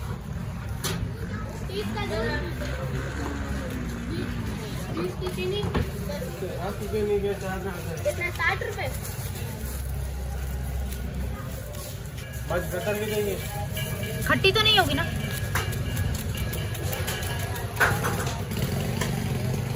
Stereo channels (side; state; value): both; identical; correlation 1.00